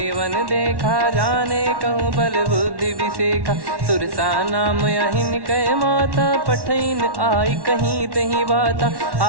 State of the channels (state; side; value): late; left; 1.1 ms